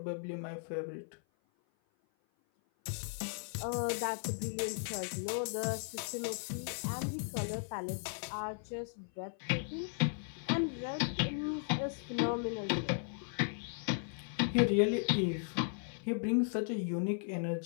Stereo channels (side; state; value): right; silent; 53 dB below the other